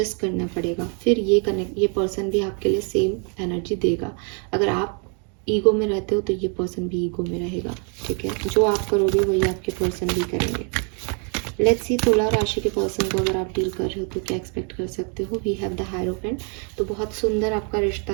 करना पड़ेगा, फिर ये पर्सन भी आपके लिए सेम एनर्जी देगा। अगर आप ईगो में रहते हो तो ये पर्सन भी ईगो में रहेगा, ठीक है। जो आप करोगे वही आपके पर्सन भी करेंगे। लेट्स सी तुला राशि के पर्सन को अगर आप डील कर रहे हो तो क्या एक्सपेक्ट कर सकते हो। वी हैव द हायरोफेंट, तो बहुत सुंदर आपका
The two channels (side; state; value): left; quieter; 39.0 dB